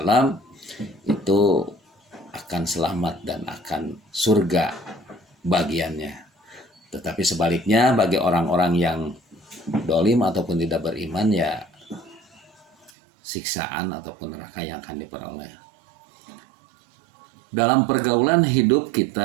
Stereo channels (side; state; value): left; drops out; at 12.9 s